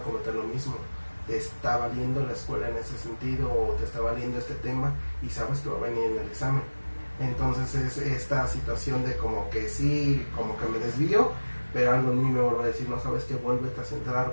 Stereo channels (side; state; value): both; inverted; correlation -1.00